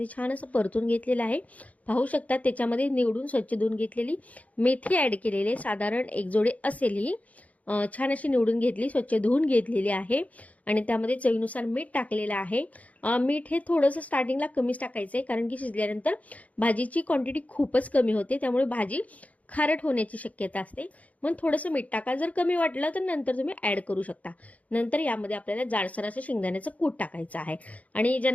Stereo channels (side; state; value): right; late; 0.070 ms